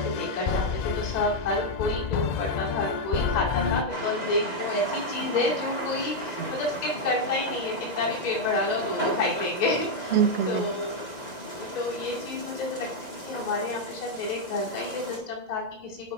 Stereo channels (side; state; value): right; late; 1.9 ms